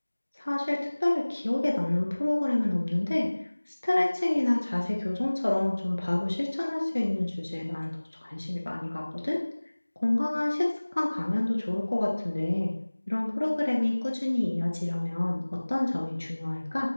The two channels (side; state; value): both; inverted; correlation -1.00